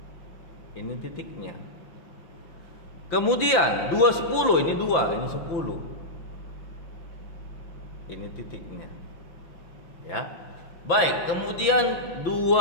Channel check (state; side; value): late; right; 5.9 ms